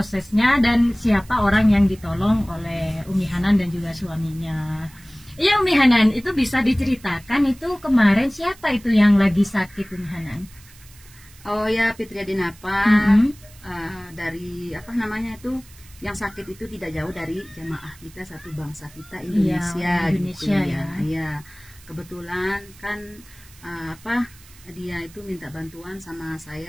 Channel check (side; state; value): right; noise; hiss, 24 dB below the sound